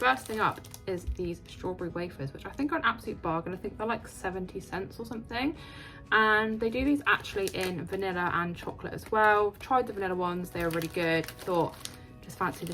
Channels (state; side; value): identical; both; correlation 1.00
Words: thing up is these strawberry wafers, which I think are an absolute bargain. I think they're like 70 cents or something, and they do these actually in vanilla and chocolate as well. I've tried the vanilla ones, they were really good. Thought just fancy